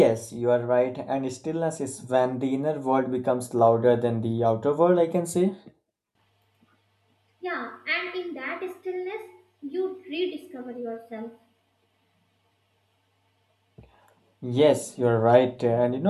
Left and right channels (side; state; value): both; identical; correlation 1.00